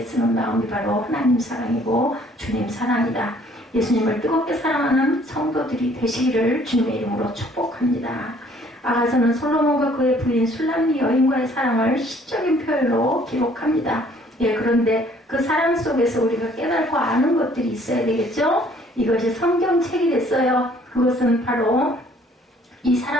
마음이 바로 하나님 사랑이고 주님 사랑이다. 예수님을 뜨겁게 사랑하는 성도들이 되시기를 주님의 이름으로 축복합니다. 아가서는 솔로몬과 그의 부인 술람미 여인과의 사랑을 시적인 표현으로 기록합니다. 그런데 그 사랑 속에서 우리가 깨닫고 아는 것들이 있어야 되겠죠? 이것이 성경책이 됐어요. 그것은 바로 이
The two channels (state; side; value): normal; both; correlation 0.59